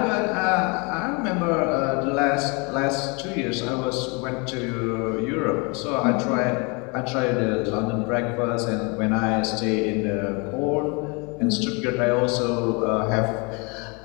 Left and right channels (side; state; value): right; quieter; 30.8 dB